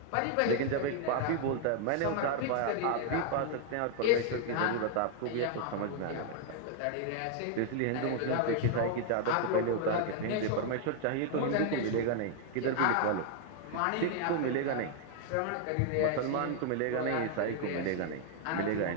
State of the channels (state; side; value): different; both; correlation 0.00